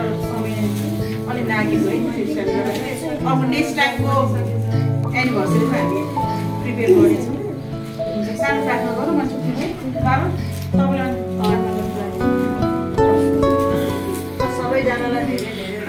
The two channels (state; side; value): identical; both; correlation 1.00